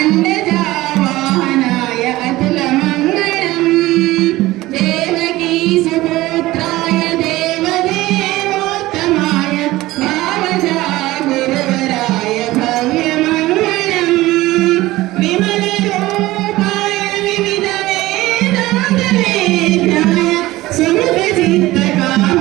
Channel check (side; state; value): left; quieter; 17.9 dB